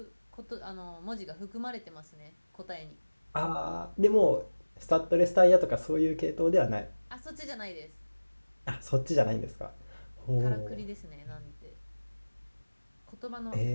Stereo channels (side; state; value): both; inverted; correlation -1.00